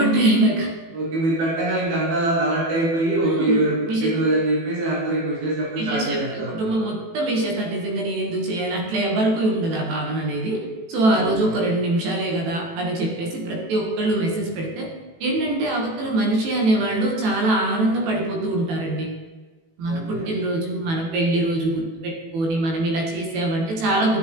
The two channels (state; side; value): late; left; 18 ms